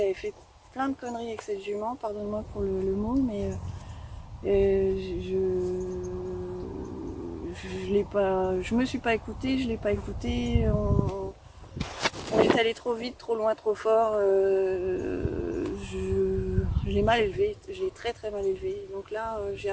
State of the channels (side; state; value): both; identical; correlation 1.00